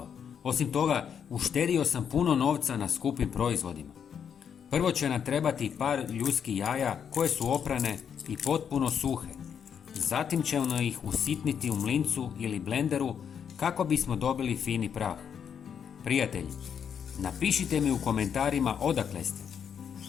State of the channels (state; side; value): quieter; right; 7.7 dB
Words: Osim toga, uštedio sam puno novca na skupim proizvodima. Prvo će nam trebati par ljudskih jaja koje su oprane i potpuno suhe. Zatim ćemo ih usitniti u mlincu ili blenderu kako bismo dobili fini prah. Prijatelji, napišite mi u komentarima odakle ste.